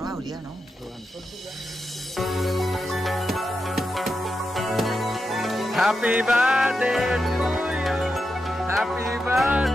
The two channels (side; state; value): both; normal; correlation 0.87